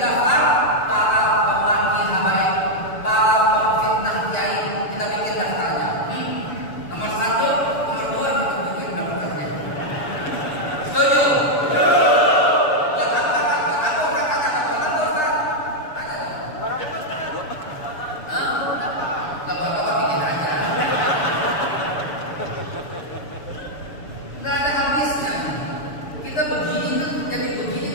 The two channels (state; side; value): late; right; 7.0 ms